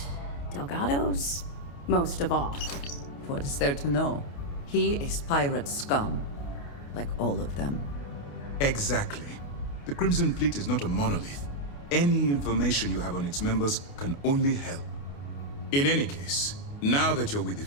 Delgado's most of all. What is there to know? He is pirate scum, like all of them. Exactly. The Crimson Fleet is not a monolith. Any information you have on its members can only help. In any case, now that you're with the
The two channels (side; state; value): right; late; 28 ms